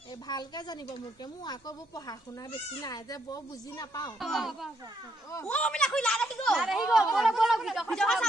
এই ভালকে জানিব মোকে মোৰ আকৌ বৰ পঢ়া শুনা বেছি নাই যে বৰ বুজি নাপাওঁ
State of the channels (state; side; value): normal; both; correlation 0.75